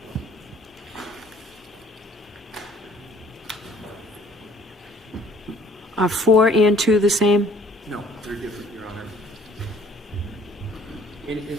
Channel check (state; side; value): normal; both; correlation 0.57